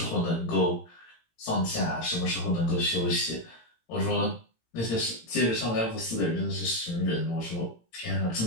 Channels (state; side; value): late; right; 18 ms